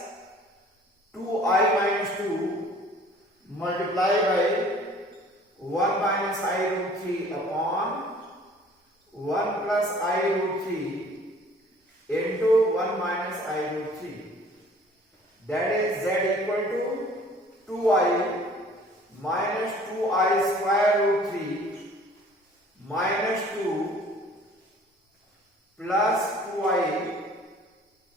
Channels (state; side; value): normal; both; correlation 0.52